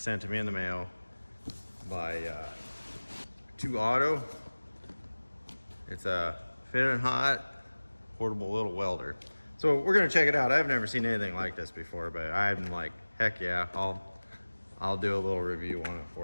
to me in the mail by 2 Auto. It's a Fitinhot portable little welder. So we're gonna check it out. I've never seen anything like this before, but I'm like, heck yeah, I'll do a little review on it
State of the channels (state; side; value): inverted; both; correlation -1.00